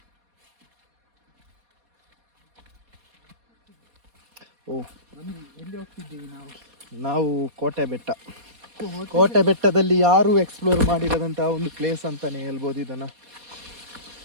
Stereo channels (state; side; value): late; left; 4.2 ms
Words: ಓ, ಎಲ್ಲಿ ಹೋಗ್ತಿದ್ದೀವಿ ನಾವು? ನಾವು ಕೋಟೆ ಬೆಟ್ಟ. ಕೋಟೆ ಬೆಟ್ಟದಲ್ಲಿ ಯಾರು ಎಕ್ಸ್ಪ್ಲೋರ್ ಮಾಡಿರೋದಂತಹ ಒಂದು ಪ್ಲೇಸ್ ಅಂತಾನೆ ಹೇಳ್ಬೋದು ಇದನ್ನು.